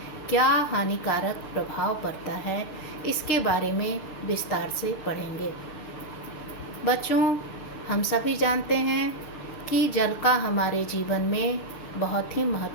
क्या हानिकारक प्रभाव पड़ता है, इसके बारे में विस्तार से पढ़ेंगे। बच्चों, हम सभी जानते हैं कि जल का हमारे जीवन में बहुत ही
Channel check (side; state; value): right; late; 6.6 ms